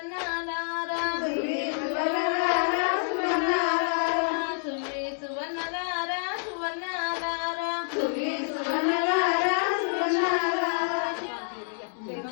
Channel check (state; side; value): silent; right; 60 dB below the other